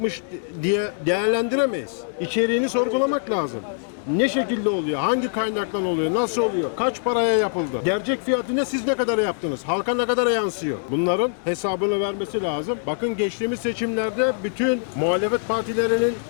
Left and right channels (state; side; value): silent; right; digital silence